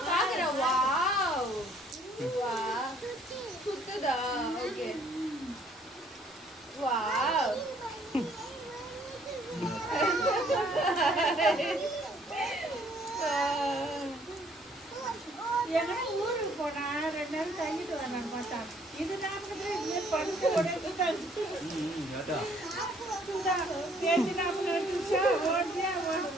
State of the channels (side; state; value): both; normal; correlation 0.62